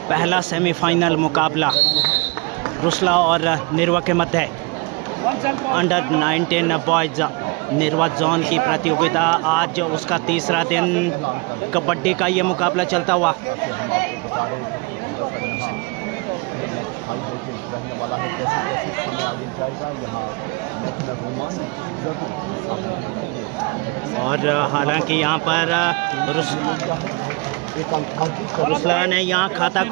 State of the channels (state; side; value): quieter; left; 28.6 dB